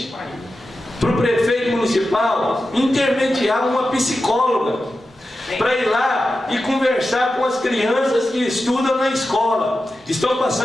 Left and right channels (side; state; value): both; normal; correlation 0.92